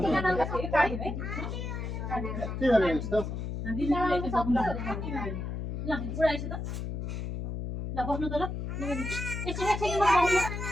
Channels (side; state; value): left; noise; hum, 4 dB below the sound